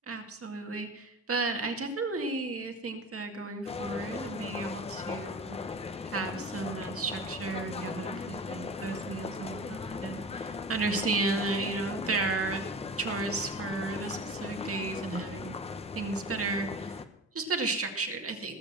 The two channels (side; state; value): both; normal; correlation 0.35